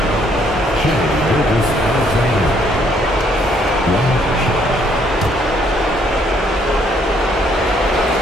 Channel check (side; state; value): both; normal; correlation 0.67